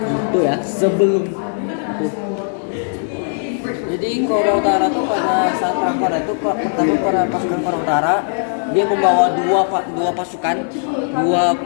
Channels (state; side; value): silent; right; 61 dB below the other